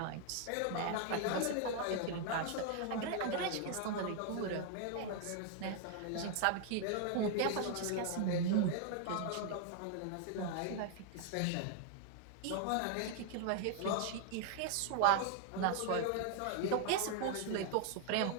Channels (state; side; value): different; both; correlation 0.00